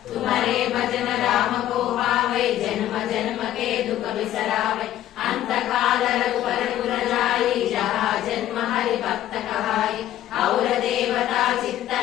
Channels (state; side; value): quieter; right; 12.8 dB